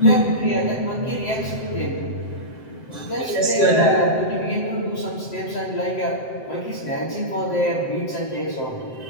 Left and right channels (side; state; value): right; late; 7.8 ms